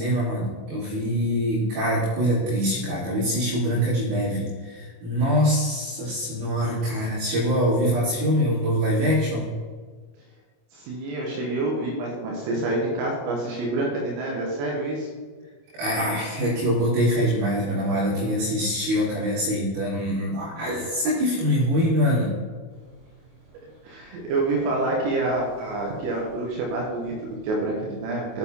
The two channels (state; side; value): late; left; 25 ms